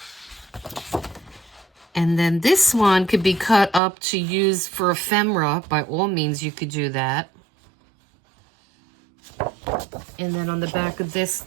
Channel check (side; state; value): left; drops out; at 3.8 s